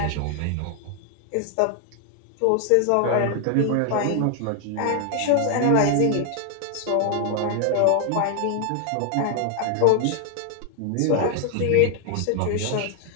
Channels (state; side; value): different; both; correlation 0.00